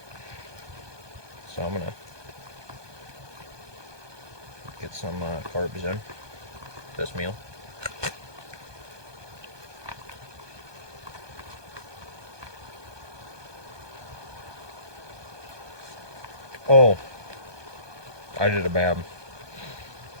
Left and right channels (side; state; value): left; late; 1.2 ms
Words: So I'm gonna get some carbs in this meal. Oh, I did a bad.